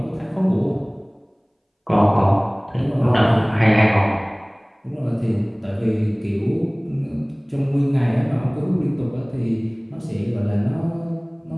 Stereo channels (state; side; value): identical; both; correlation 1.00